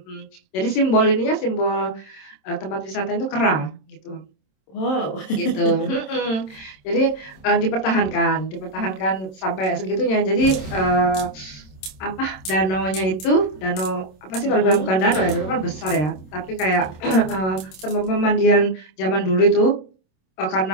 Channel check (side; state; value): right; late; 27 ms